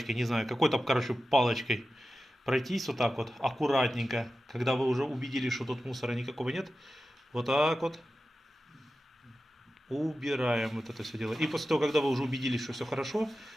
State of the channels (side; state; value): both; normal; correlation 0.93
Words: не знаю, какой-то, короче, палочкой. Пройтись вот так вот, аккуратненько, когда вы уже убедились, что тут мусора никакого нет. Вот так вот убираем вот это все дело. И после того, когда вы уже убедились, что все хорошо,